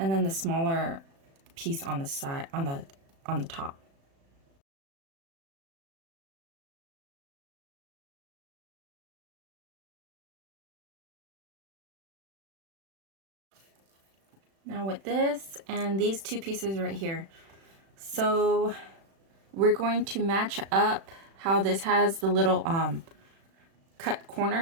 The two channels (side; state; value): left; late; 36 ms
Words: then the smaller piece on the side, on the top. Now with this and these two pieces right here, so we're going to match up how this has the little cut